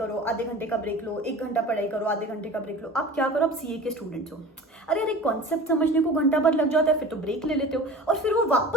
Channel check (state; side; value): normal; both; correlation 0.39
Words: आधे घंटे का ब्रेक लो, 1 घंटा पढ़ाई करो, आधे घंटे का ब्रेक लो। आप क्या करो, आप सीए के स्टूडेंट्स हो, अरे अरे कॉन्सेप्ट समझने को घंटा भर लग जाता है, फिर तो ब्रेक ले लेते हो और फिर वो